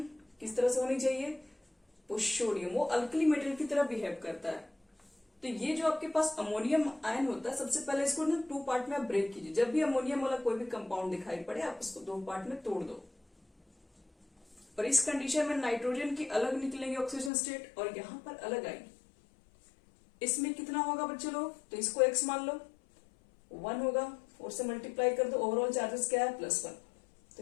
किस तरह से होनी चाहिए, पुष्योडियम, वो अल्कली मेटल की तरह बिहेव करता है। तो ये जो आपके पास अमोनियम आयन होता है, सबसे पहले इसको ना 2 पार्ट में आप ब्रेक कीजिए। जब भी अमोनियम वाला कोई भी कंपाउंड दिखाई पड़े आप इसको 2 पार्ट में तोड़ दो, और इस कंडीशन में नाइट्रोजन की अलग निकलेंगे ऑक्सीजन स्टेट और यहां पर अलग आएगी। इसमें कितना होगा बच्चे लोग, तो इसको x मान लो, 1 होगा, 4 से मल्टीप्लाई कर दो, ओवरऑल चार्जेस क्या है +1,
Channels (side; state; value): right; drops out; at 17.3 s